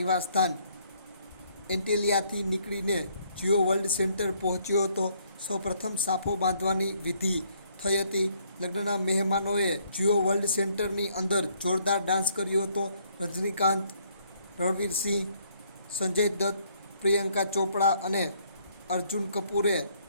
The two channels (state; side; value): inverted; both; correlation -0.67